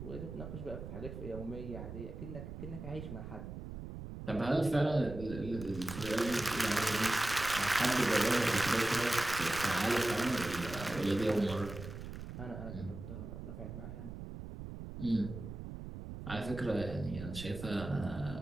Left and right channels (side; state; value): right; noise; rumble, 9 dB below the sound